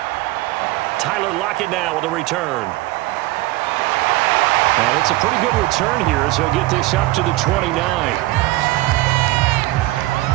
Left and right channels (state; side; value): quieter; left; 18.7 dB